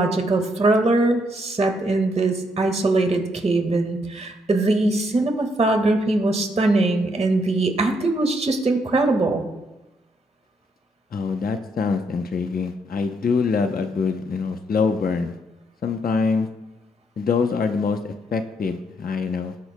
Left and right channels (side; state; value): both; normal; correlation 0.74